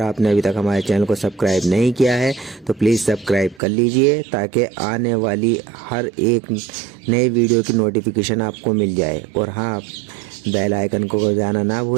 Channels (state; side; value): drops out; left; at 3.6 s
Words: आपने अभी तक हमारे चैनल को सब्सक्राइब नहीं किया है तो प्लीज़ सब्सक्राइब कर लीजिए, ताकि आने वाली हर एक नई वीडियो की नोटिफिकेशन आपको मिल जाए। और हाँ, बेल आइकन को बजाना ना